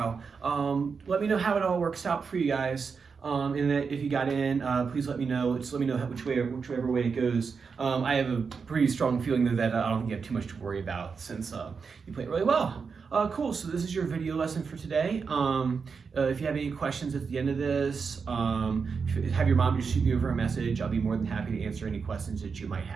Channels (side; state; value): left; quieter; 5.5 dB